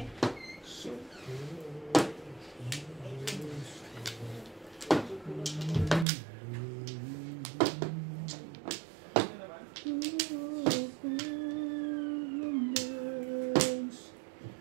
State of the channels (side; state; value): left; drops out; at 6.1 s